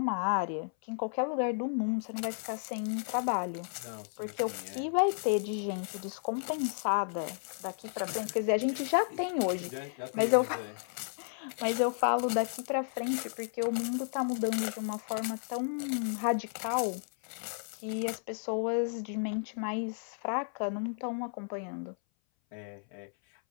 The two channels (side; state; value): right; silent; 56 dB below the other